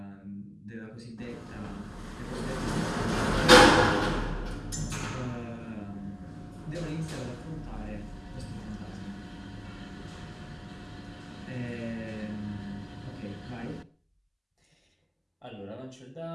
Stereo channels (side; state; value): both; identical; correlation 1.00